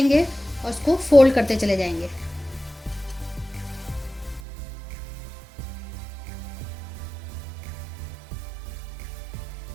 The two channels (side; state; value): left; drops out; at 4.4 s